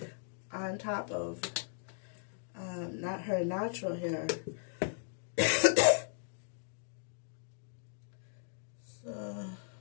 on top of not her natural hair. So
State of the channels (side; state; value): right; silent; digital silence